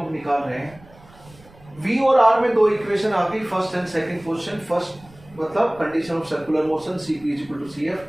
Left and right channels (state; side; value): noise; right; rumble, 24 dB below the sound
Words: निकाल रहे हैं। V और R में 2 इक्वेशन आ गई, first and second position. First मतलब condition of circular motion Cp is equal to